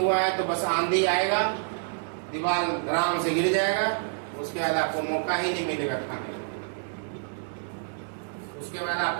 है तो बस आंधी आएगा, दीवार आराम से गिर जाएगा, उसके बाद आपको मौका ही नहीं मिलेगा खाने का। उसके बाद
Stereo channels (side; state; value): left; silent; digital silence